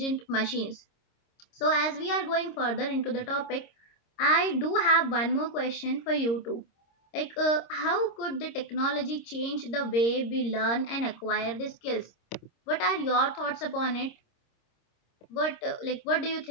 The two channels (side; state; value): right; late; 26 ms